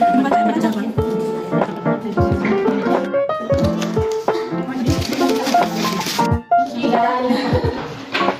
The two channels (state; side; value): identical; both; correlation 1.00